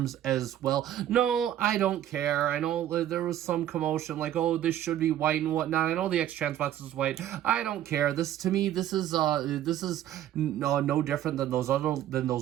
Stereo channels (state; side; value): quieter; left; 11.8 dB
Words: as well. No, I don't care. I know there was some commotion, like, oh, this should be white and whatnot. I know the X-Transbox is white. I don't care. This, to me, this is no different than